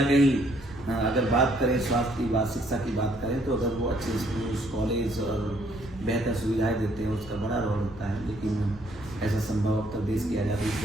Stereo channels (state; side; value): normal; both; correlation 0.66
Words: कहीं अगर बात करें स्वास्थ्य की बात, शिक्षा की बात करें तो अगर वो अच्छे स्कूल, कॉलेज और बेहतर सुविधाएं देते हैं उसका बड़ा रोल होता है, लेकिन ऐसा संभव अब तक देश की आज़ादी